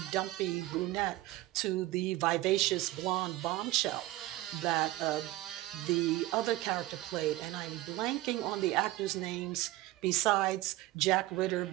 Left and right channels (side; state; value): left; quieter; 17.5 dB